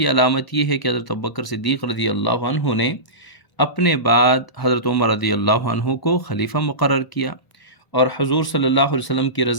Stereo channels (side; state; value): right; late; 1.1 ms